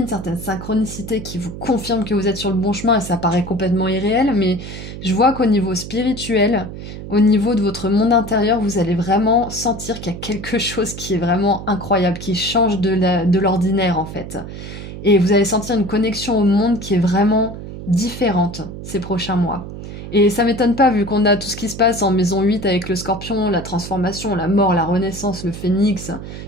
certaines synchronicités qui vous confirment que vous êtes sur le bon chemin et ça paraît complètement irréel, mais je vois qu'au niveau spirituel, au niveau de votre monde intérieur, vous allez vraiment sentir qu'il y a quelque chose qui est vraiment incroyable, qui change de l'ordinaire en fait. Et vous allez sentir une connexion au monde qui est vraiment différente ces prochains mois. Et ça m'étonne pas vu qu'on a tout ce qui se passe en maison 8 avec le scorpion, la transformation, la mort, la renaissance, le phénix,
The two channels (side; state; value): right; noise; hum, 10 dB below the sound